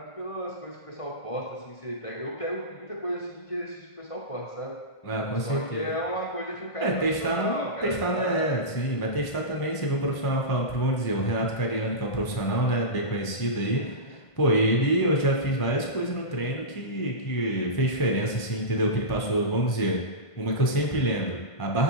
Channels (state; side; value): late; right; 1.5 ms